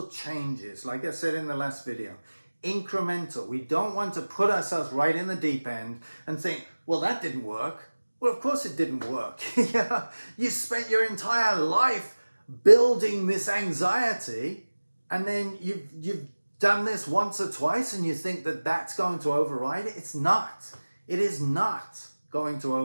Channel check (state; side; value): inverted; both; correlation -1.00